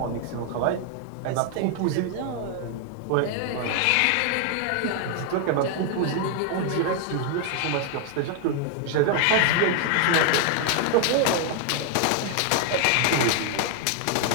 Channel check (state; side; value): different; both; correlation 0.00